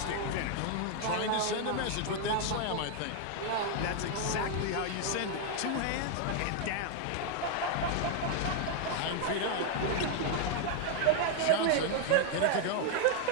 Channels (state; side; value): different; both; correlation 0.00